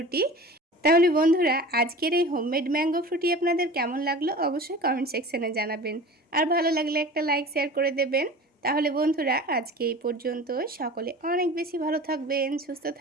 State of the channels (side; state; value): both; normal; correlation 0.38